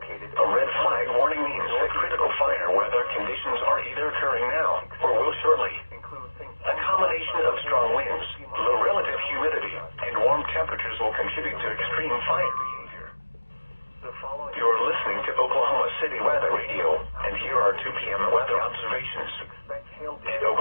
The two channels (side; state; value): both; inverted; correlation -1.00